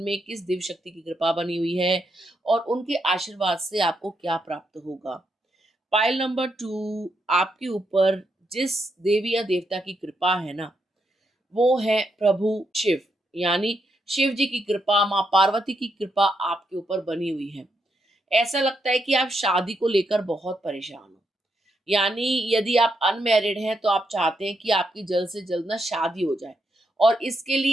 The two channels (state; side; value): normal; both; correlation 0.80